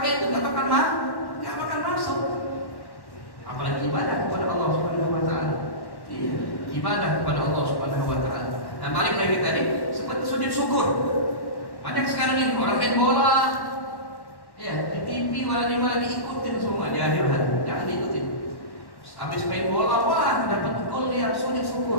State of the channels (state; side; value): late; right; 1.1 ms